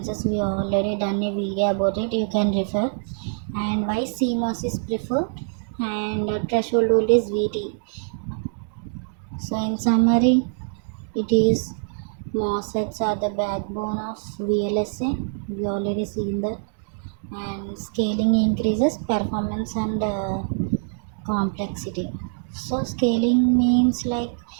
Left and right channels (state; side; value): silent; left; digital silence